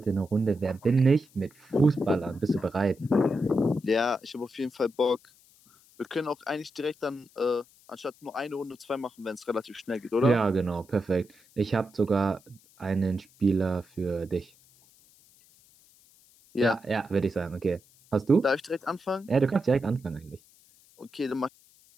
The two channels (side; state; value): left; noise; hiss, 29 dB below the sound